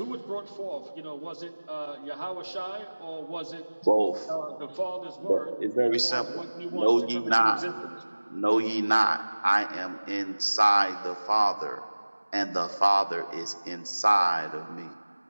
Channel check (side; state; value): both; inverted; correlation -1.00